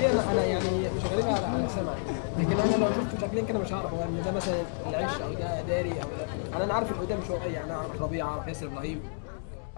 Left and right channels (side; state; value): right; silent; digital silence